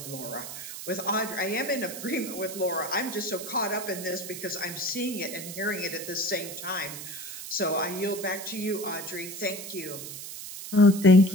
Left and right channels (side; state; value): right; noise; hiss, 9 dB below the sound